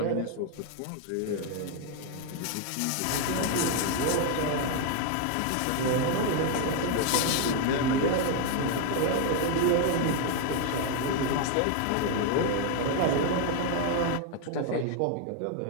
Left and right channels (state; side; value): different; both; correlation 0.01